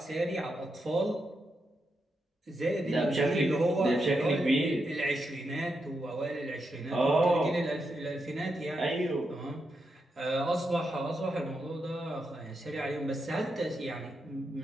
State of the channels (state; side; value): normal; both; correlation 0.84